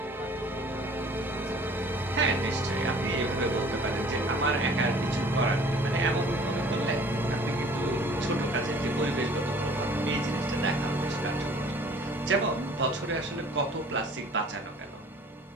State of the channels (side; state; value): both; normal; correlation 0.51